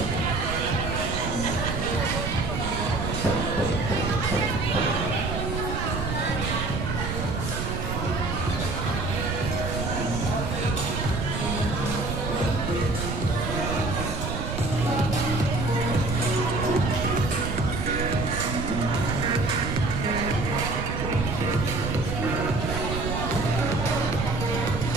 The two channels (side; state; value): right; noise; rumble, 3 dB below the sound